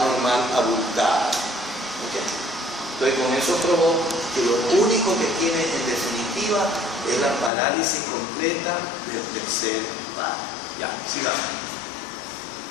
abultada. ¿Okay? Entonces con eso probó que lo único que tiene en definitiva es la parálisis completa del tercer par. Ya, sigamos.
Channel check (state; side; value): drops out; right; at 7.5 s